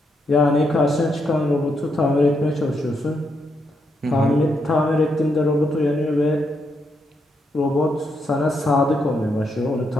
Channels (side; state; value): both; normal; correlation 0.79